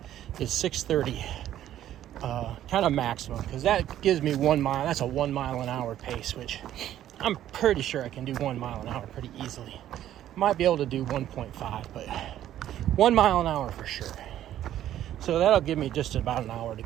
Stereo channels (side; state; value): left; quieter; 12.0 dB